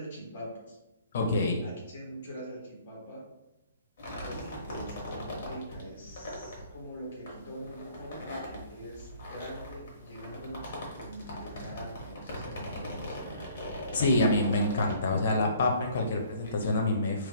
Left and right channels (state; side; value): inverted; both; correlation -0.57